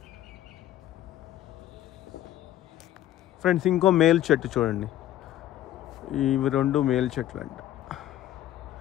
ఫ్రెండ్స్. ఇంకో మేల్ చెట్టు చూడండి. ఇవి 2 మేల్ చెట్లు అంట.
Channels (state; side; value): quieter; right; 13.0 dB